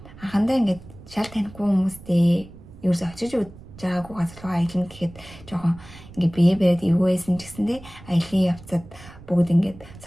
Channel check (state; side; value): noise; right; rumble, 19 dB below the sound